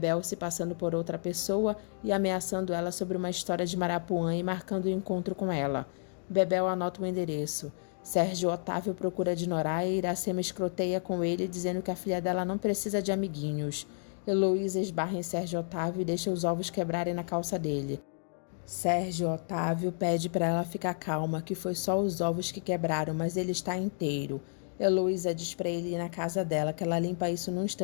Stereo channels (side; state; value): right; silent; digital silence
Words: se passando por outra pessoa e ameaçando ela sobre uma história de Marapuã e marcando o encontro com ela. Bebel anota o endereço. Sérgio Otávio procura de Noraia e Iracema escroteia com ele, dizendo que a filha dela não precisa de amiguinhos. Heloísa esbarra em Sérgio Otávio e deixa os ovos quebrarem na calça dele. Sérgio Otávio pede para ela ficar calma, que foi só os ovos que quebraram, mas ele está inteiro. Heloísa diz para ele ir na casa dela, que ela limpa isso num